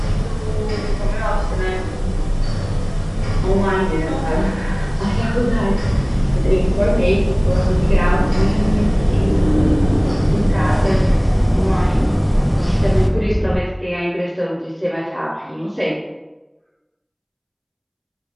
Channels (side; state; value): both; identical; correlation 1.00